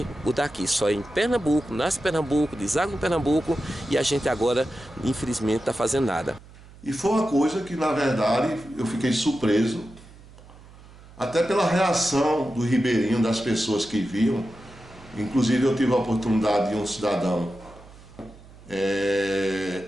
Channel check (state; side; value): noise; right; hum, 21 dB below the sound